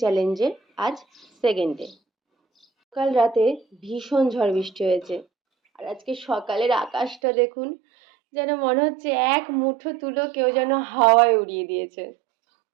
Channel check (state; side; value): drops out; left; at 7.2 s